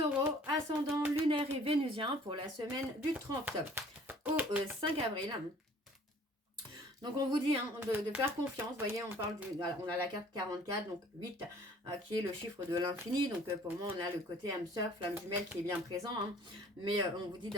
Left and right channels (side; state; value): both; normal; correlation 0.53